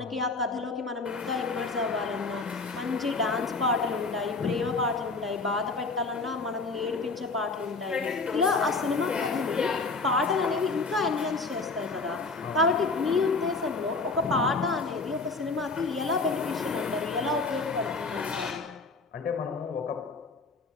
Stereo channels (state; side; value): quieter; right; 3.8 dB